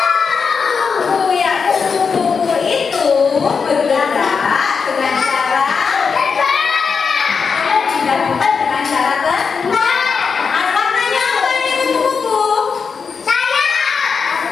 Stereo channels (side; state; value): right; quieter; 5.6 dB